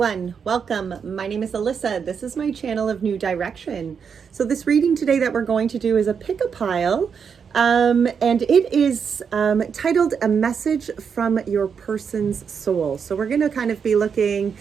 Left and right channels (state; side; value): quieter; left; 6.6 dB